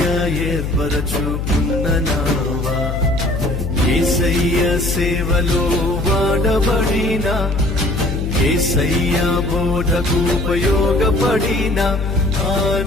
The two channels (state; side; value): noise; left; hum, 3 dB below the sound